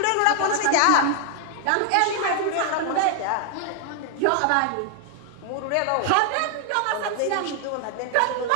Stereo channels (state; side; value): different; both; correlation 0.00